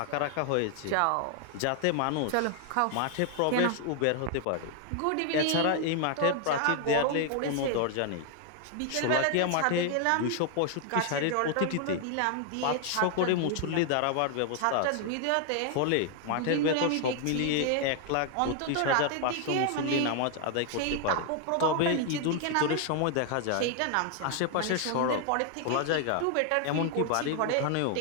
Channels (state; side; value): different; both; correlation 0.00